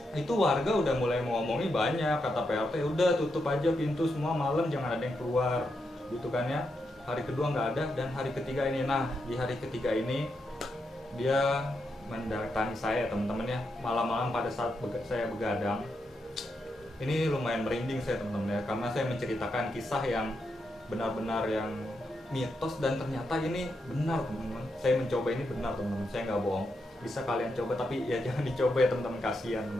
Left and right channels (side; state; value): both; normal; correlation 0.83